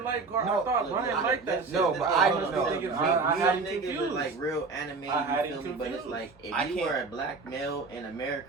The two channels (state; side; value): quieter; left; 4.2 dB